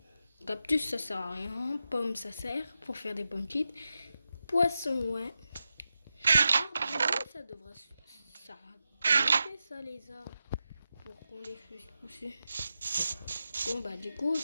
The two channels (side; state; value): both; inverted; correlation -0.90